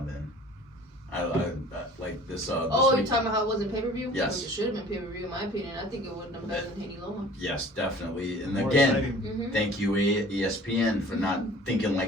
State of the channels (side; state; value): both; normal; correlation 0.48